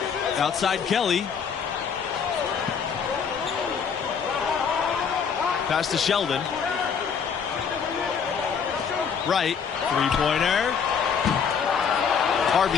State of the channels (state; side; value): quieter; right; 6.6 dB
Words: Outside Kelly. Pass to Sheldon. Right. Three-pointer.